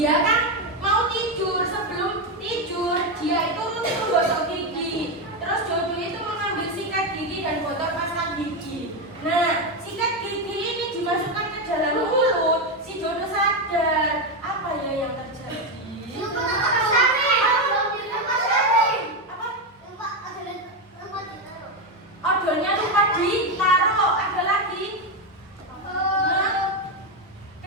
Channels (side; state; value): both; normal; correlation 0.09